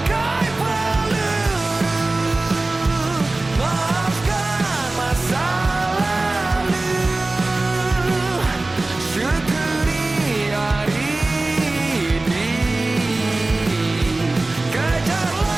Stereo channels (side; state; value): left; quieter; 3.1 dB